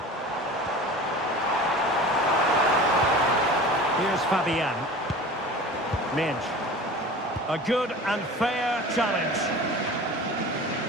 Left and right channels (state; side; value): normal; both; correlation 0.38